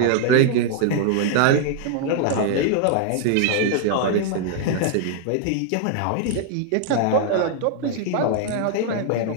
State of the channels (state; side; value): different; both; correlation 0.00